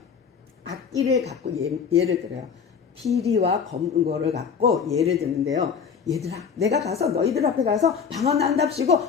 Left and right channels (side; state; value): right; quieter; 6.5 dB